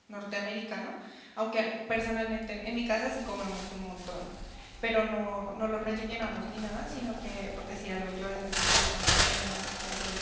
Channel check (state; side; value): identical; both; correlation 1.00